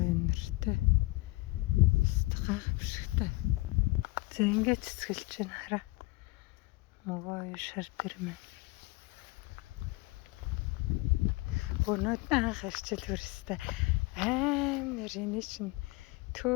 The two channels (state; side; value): quieter; right; 21.9 dB